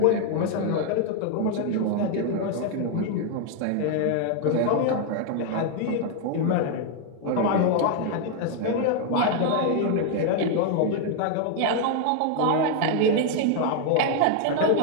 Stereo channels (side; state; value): both; different; correlation 0.00